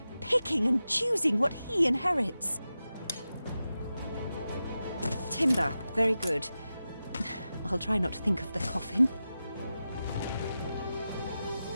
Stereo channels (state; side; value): inverted; both; correlation -0.92